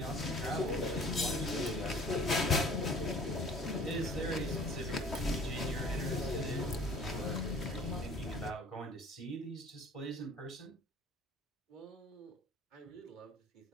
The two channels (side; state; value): both; normal; correlation 0.50